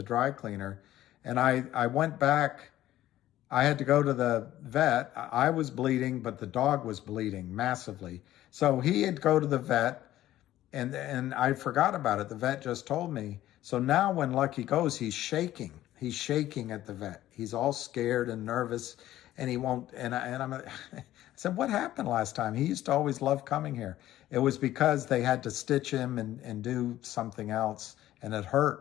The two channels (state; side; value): quieter; right; 14.0 dB